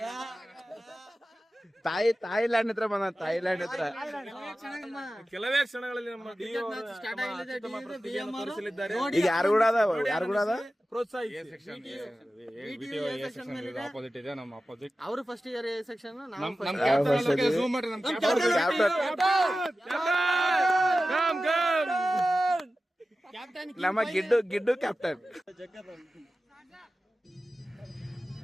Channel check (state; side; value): normal; both; correlation 0.94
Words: ಥೈಲ್ಯಾಂಡ್ ಹತ್ರ ಬಂದ. ಥೈಲ್ಯಾಂಡ್ ಹತ್ರ ಕೆಲವೇ ಕ್ಷಣಗಳಲ್ಲಿ ನಮ್ಮ ತೋರಿಸಲಿದ್ದಾರೆ. ಈಗ ಯಾರು ಕೂಡ ಅದ ಆಪೋಸಿಟ್ ಇದೆ ನಮ್ಮ ಆಪೋಸಿಟ್. ಅವರು ಫಸ್ಟ್ ಇಯರ್ ಸೆಕ್ಷನ್ ಝೂಮ್ ಮಾಡ್ರಿ. ನಮ್ಮ ಗಿಡ್ಡು ಕ್ಯಾಪ್ಟನ್.